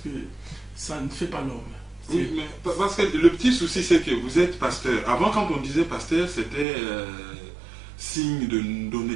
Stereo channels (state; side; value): drops out; left; at 6.7 s